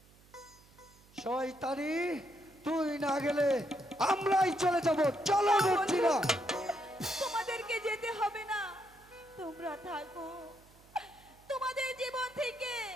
শয়তানি, তুই না গেলে আমরাই চলে যাব। চলো না মর্জিনা। বন্ধু, তোমাদেরকে যেতে হবে না, তোমরা থাকো। তোমাদের জীবন থেকে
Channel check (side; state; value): right; noise; hum, 27 dB below the sound